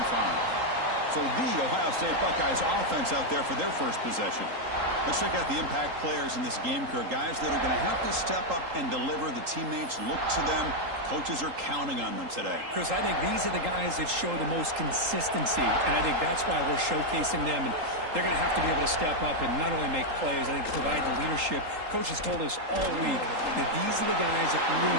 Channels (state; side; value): late; left; 3.8 ms